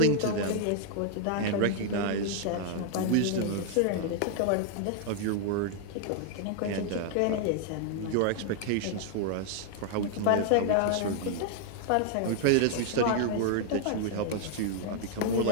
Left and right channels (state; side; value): different; both; correlation 0.00